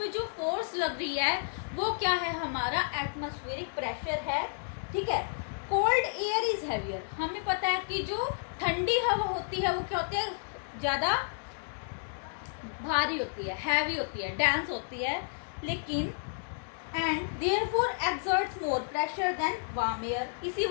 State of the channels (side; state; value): right; silent; digital silence